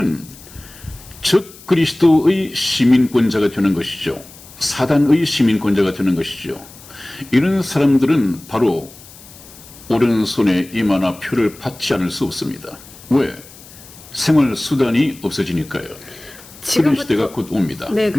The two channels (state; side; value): noise; left; hiss, 20 dB below the sound